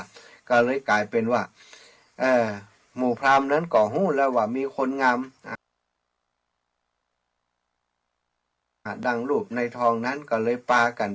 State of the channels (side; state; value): both; identical; correlation 1.00